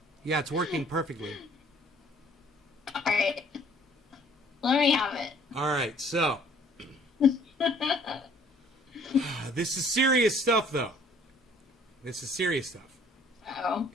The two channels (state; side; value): normal; both; correlation 0.57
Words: Yeah, it's working perfectly. All right. Let me have it. All right, so. This is serious stuff, though. This is serious stuff. Uh-oh.